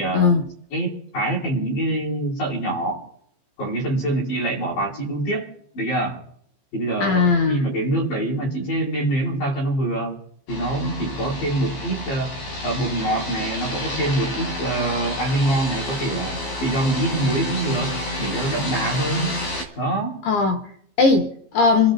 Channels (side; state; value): right; late; 15 ms